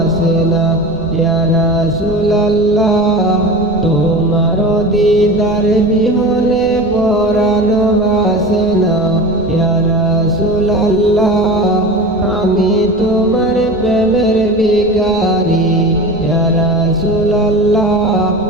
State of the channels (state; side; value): normal; both; correlation 0.32